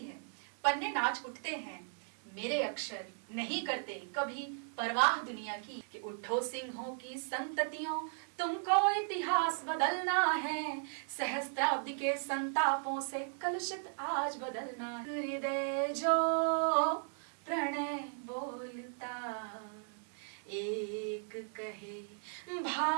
पन्ने नाच उठते हैं, मेरे अक्षर नहीं करते कभी परवाह दुनिया की। कि उठो सिंहों की संततियों, तुमको इतिहास बदलना है, सहस्त्राब्दी के संतापों से कलुषित आज बदलना। हृदय जो प्रणय बोलता एक कहे,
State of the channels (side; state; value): left; silent; digital silence